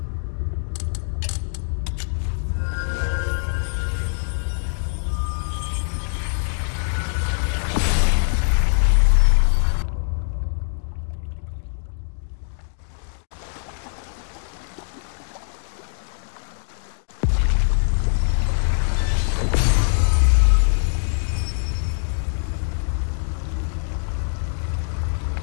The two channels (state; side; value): silent; right; digital silence